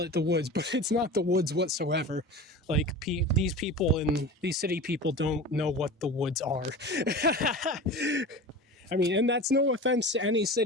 it the woods, but it's not the woods whatsoever. Like, these people and these city people don't know what the woods are. I mean, and that's no offense to any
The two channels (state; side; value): normal; both; correlation 0.33